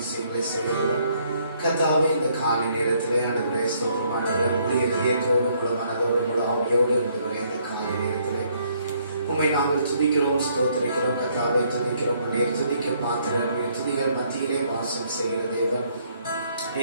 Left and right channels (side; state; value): both; inverted; correlation -0.67